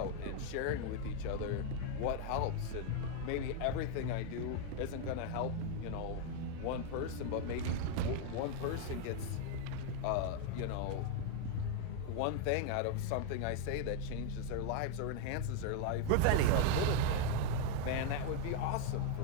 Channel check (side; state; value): both; different; correlation 0.00